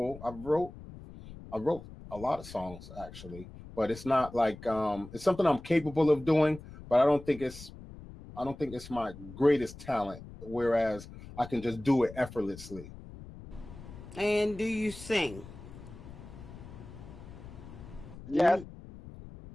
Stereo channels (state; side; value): noise; left; rumble, 15 dB below the sound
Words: I wrote a lot of songs actually, but it's not like it's something I'm capable of doing, but I don't think it's my greatest talent, whereas I can just do it effortlessly. And do you sing? Yes.